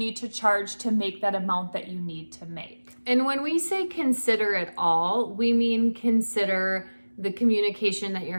to charge to make that amount that you need to make? And when we say consider it all, we mean consider the communication that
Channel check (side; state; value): both; inverted; correlation -1.00